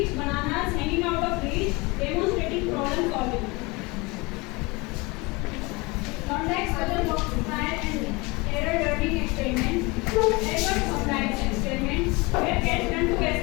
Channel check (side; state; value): right; quieter; 25.5 dB